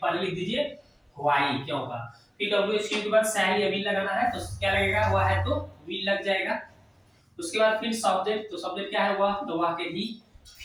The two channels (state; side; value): identical; both; correlation 1.00